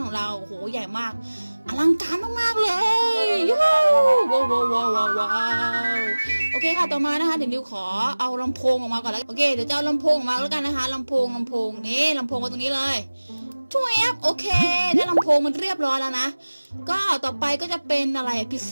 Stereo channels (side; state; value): both; inverted; correlation -1.00